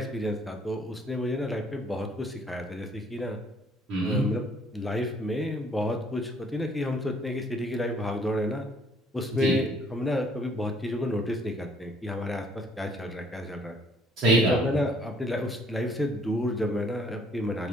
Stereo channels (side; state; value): both; normal; correlation 0.61